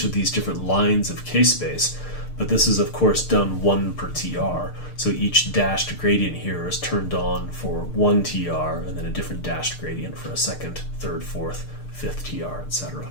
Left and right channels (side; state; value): right; late; 6.6 ms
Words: of these different lines of k-space, but this is of course done 1 per TR. So each dashed gradient here is turned on for 1 TR, and then a different dashed gradient for a second, third, fourth, fifth TR,